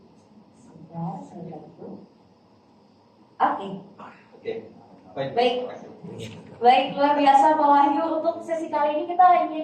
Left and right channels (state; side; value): identical; both; correlation 1.00